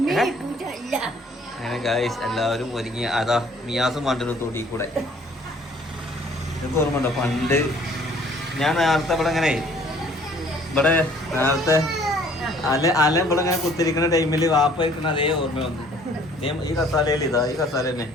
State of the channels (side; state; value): both; normal; correlation 0.57